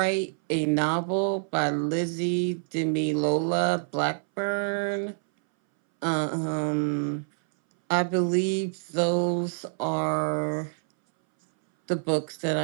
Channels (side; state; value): left; silent; 60 dB below the other